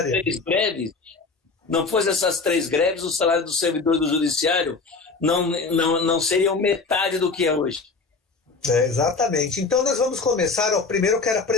3 greves, não fosse essas 3 greves, o salário do servidor do Judiciário não seriam metade do que é hoje. Exatamente. Então nós vamos começar. Primeiro eu quero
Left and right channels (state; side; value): quieter; right; 4.2 dB